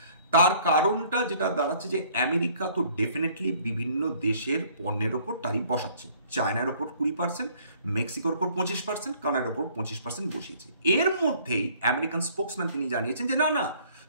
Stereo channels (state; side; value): inverted; both; correlation -0.58